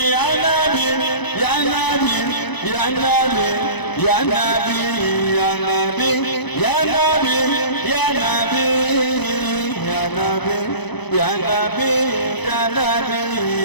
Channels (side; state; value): right; late; 0.99 ms